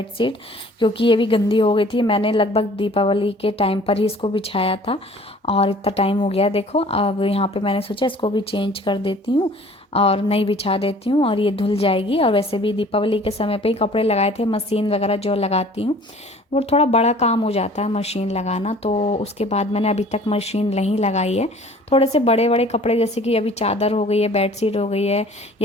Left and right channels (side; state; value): both; normal; correlation 0.50